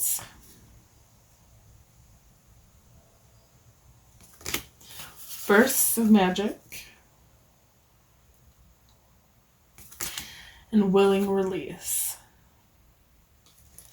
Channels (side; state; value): both; identical; correlation 1.00